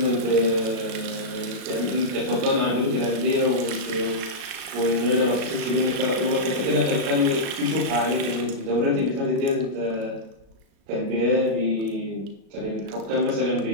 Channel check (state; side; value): late; left; 36 ms